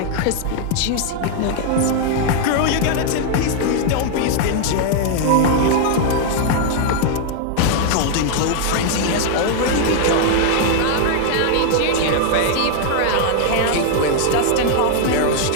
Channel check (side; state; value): both; different; correlation 0.00